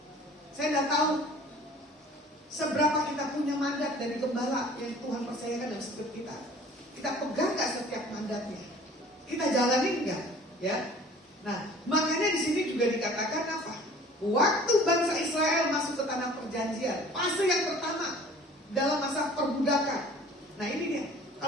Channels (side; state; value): both; normal; correlation 0.49